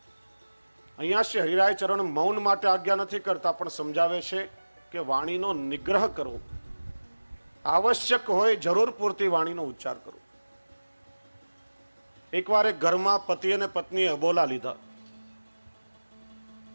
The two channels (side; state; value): both; inverted; correlation -1.00